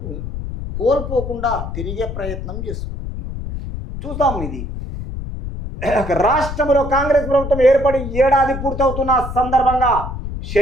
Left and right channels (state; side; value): noise; left; rumble, 7 dB below the sound